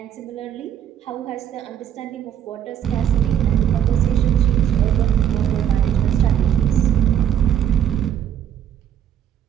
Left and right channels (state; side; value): quieter; left; 9.9 dB